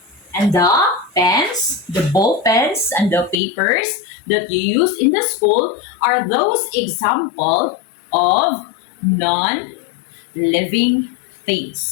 And the pens, the ball pens, and the papers that you use in the school are those example of non-living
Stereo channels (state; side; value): drops out; right; at 3.4 s